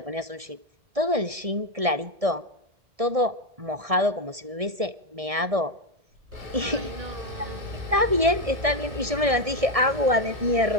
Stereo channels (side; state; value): left; late; 1.6 ms